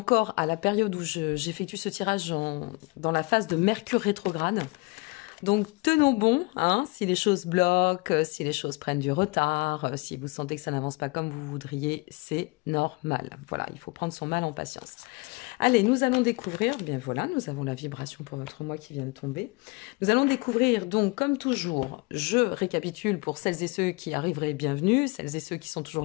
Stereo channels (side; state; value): right; quieter; 27.2 dB